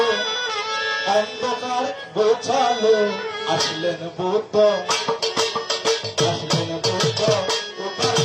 অন্ধকার গোছালো। আসলেন বুদ্ধ, আসলেন বুদ্ধ, উপার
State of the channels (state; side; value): identical; both; correlation 1.00